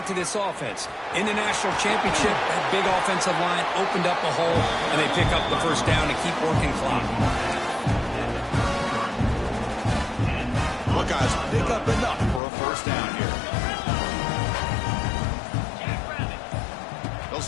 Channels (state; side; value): drops out; right; at 12.4 s